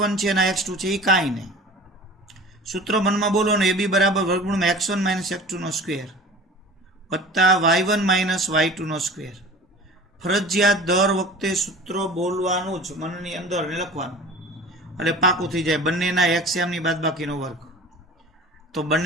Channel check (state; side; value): normal; both; correlation 0.40